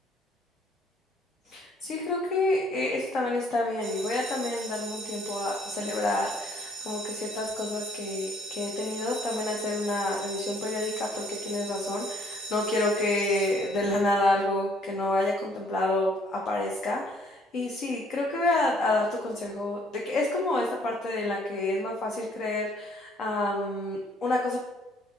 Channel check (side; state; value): both; normal; correlation 0.63